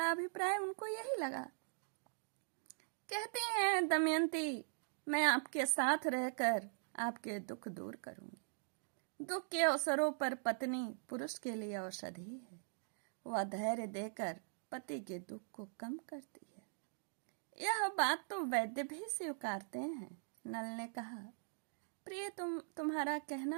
अभिप्राय उनको यही लगा। कहते हैं, दमयंती, मैं आपके साथ रहकर आपके दुख दूर करूंगी। दुख के अवसरों पर पत्नी पुरुष के लिए औषधि है। वह धैर्य देकर पति के दुख को कम करती है। यह बात तो वैद्य भी स्वीकारते हैं। नल ने कहा, प्रिय, तुम्हारा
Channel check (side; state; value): left; silent; digital silence